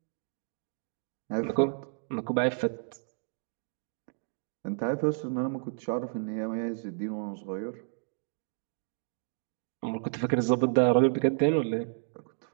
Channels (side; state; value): left; silent; digital silence